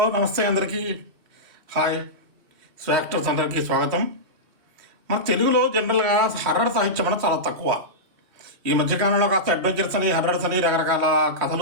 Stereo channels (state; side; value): late; left; 3.1 ms